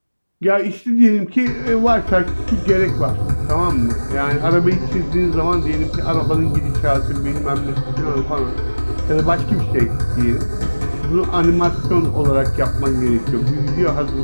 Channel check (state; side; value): inverted; both; correlation -1.00